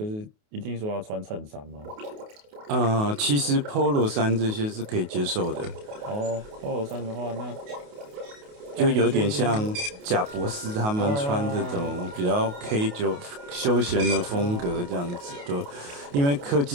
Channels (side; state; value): left; late; 28 ms